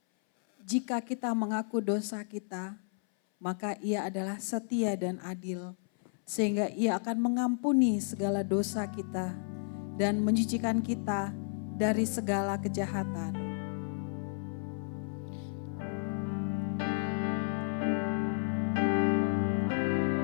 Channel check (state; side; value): silent; right; 56 dB below the other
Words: jika kita mengaku dosa kita, maka Ia adalah setia dan adil, sehingga Ia akan mengampuni segala dosa kita dan mencucikan kita dari segala kejahatan.